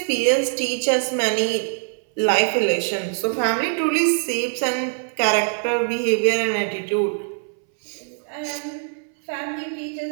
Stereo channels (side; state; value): left; silent; 64 dB below the other